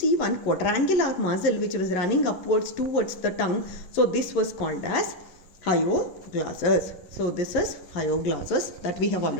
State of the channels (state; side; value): late; right; 11 ms